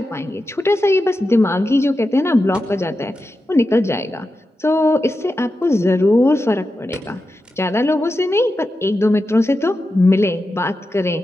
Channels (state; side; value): normal; both; correlation 0.90